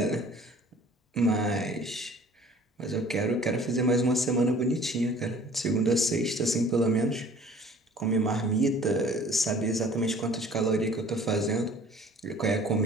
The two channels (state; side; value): normal; both; correlation 0.50